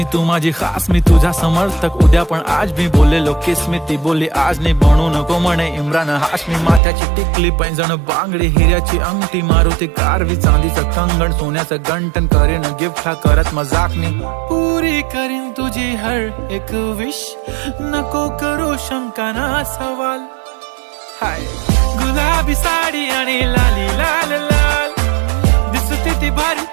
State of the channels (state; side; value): drops out; left; at 6.8 s